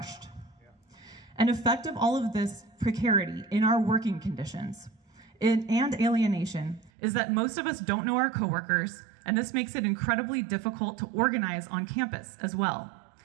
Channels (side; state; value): left; drops out; at 6.9 s